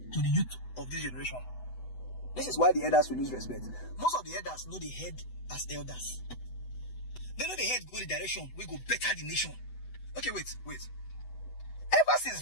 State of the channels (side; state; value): right; late; 8.0 ms